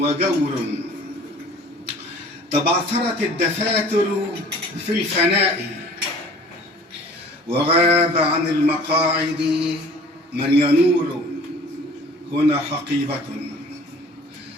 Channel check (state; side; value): normal; both; correlation 0.48